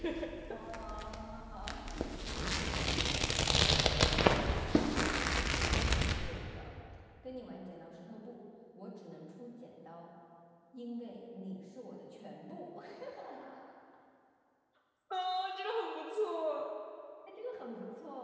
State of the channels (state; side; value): identical; both; correlation 1.00